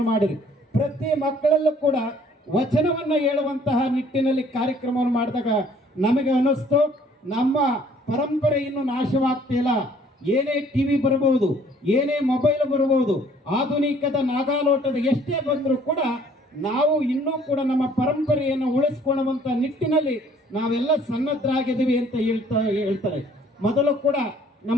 ಮಾಡಿದ್ರು. ಪ್ರತಿ ಮಕ್ಕಳಲ್ಲೂ ಕೂಡ ವಚನವನ್ನ ಹೇಳುವಂತಹ ನಿಟ್ಟಿನಲ್ಲಿ ಕಾರ್ಯಕ್ರಮವನ್ನು ಮಾಡಿದಾಗ ನಮಗೆ ಅನ್ನಿಸ್ತು ನಮ್ಮ ಪರಂಪರೆ ಇನ್ನು ನಾಶವಾಗ್ತಿಲ್ಲ. ಏನೇ ಟಿವಿ ಬರಬಹುದು, ಏನೇ ಮೊಬೈಲ್ ಬರಬಹುದು, ಆಧುನಿಕದ ನಾಗಾಲೋಟದ ಎಷ್ಟೇ ಬಂದರೂ ಕೂಡ ನಾವು ಇನ್ನೂ ಕೂಡ ನಮ್ಮ ಪರಂಪರೆಯನ್ನು ಉಳಿಸ್ಕೊಳ್ಳುವಂತ ನಿಟ್ಟಿನಲ್ಲಿ ನಾವೆಲ್ಲ ಸನ್ನದ್ಧರಾಗಿದ್ದೀವಿ ಅಂತ ಹೇಳ್ತಾರೆ. ಮೊದಲು ಕೂಡ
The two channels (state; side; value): normal; both; correlation 0.58